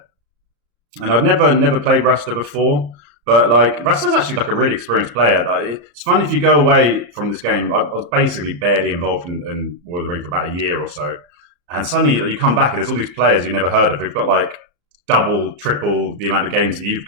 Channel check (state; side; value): late; left; 34 ms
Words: and I'd never played Rasta before. But like Rasta's actually like a really experienced player. It's funny if you go away from this game. I was basically barely involved in War of the Ring for about a year or so, and suddenly like, you come back and there's all these players you never heard of who've got like double, triple the amount of games that you've